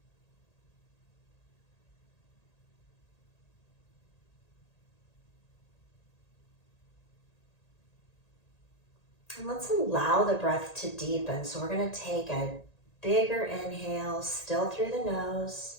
And let's allow the breath to deepen. So we're going to take a bigger inhale, still through the nose.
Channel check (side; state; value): right; late; 1.8 ms